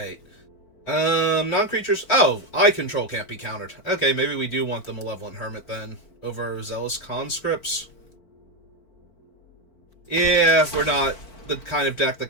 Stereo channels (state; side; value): late; right; 4.5 ms